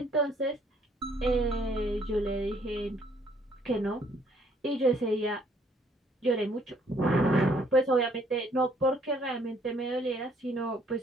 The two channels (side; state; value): both; normal; correlation 0.64